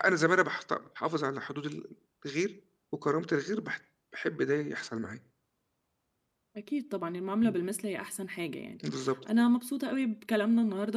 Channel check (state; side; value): identical; both; correlation 1.00